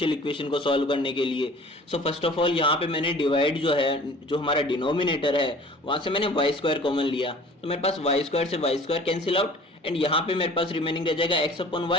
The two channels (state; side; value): normal; both; correlation 0.46